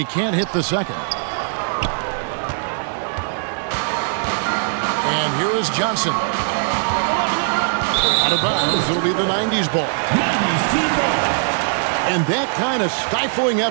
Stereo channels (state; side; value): silent; left; digital silence